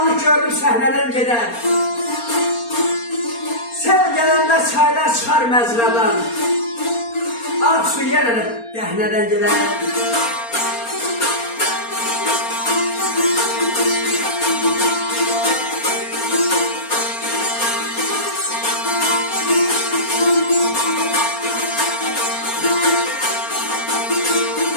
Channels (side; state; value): right; late; 4.3 ms